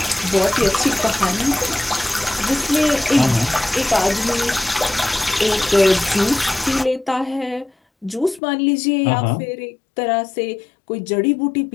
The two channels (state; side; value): drops out; right; at 8.4 s